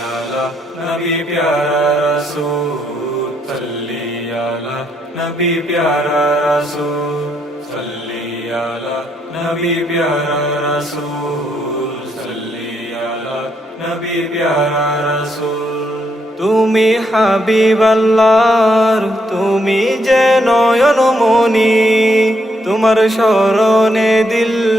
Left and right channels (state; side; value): normal; both; correlation 0.76